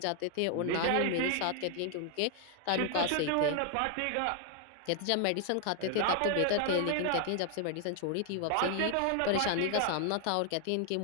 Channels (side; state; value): both; different; correlation 0.00